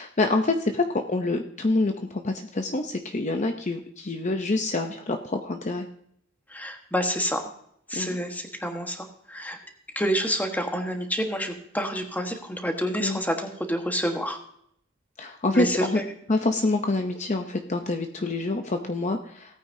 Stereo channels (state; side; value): normal; both; correlation 0.54